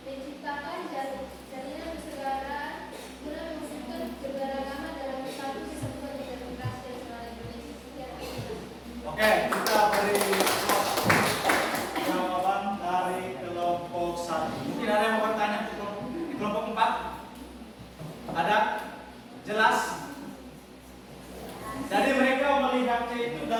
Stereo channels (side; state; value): both; identical; correlation 1.00